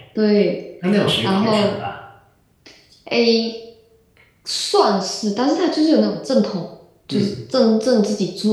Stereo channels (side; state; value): both; identical; correlation 1.00